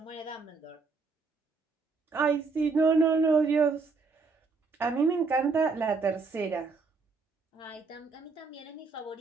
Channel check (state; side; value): quieter; left; 4.4 dB